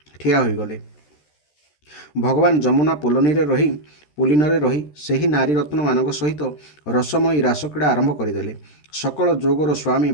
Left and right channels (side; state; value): right; late; 13 ms